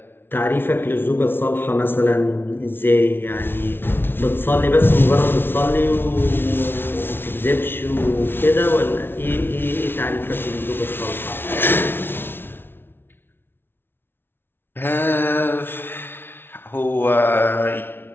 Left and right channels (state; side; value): late; right; 0.11 ms